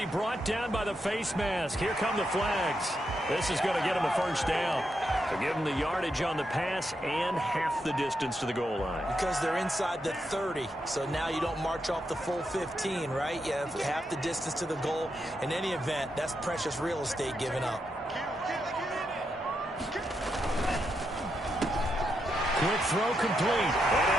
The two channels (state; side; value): normal; both; correlation 0.83